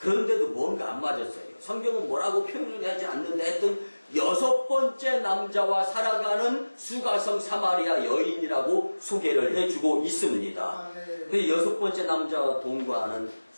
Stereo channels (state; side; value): inverted; both; correlation -1.00